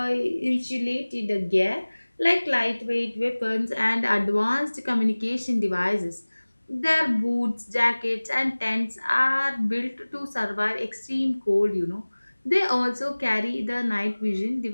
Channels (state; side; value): inverted; both; correlation -1.00